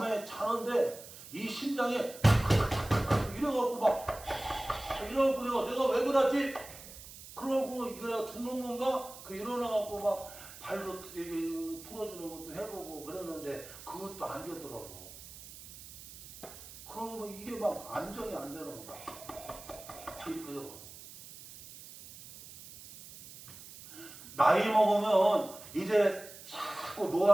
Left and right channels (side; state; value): right; noise; hiss, 16 dB below the sound